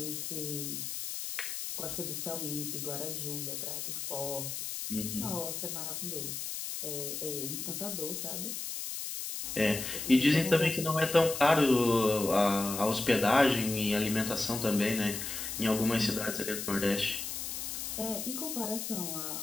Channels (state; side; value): noise; left; hiss, 5 dB below the sound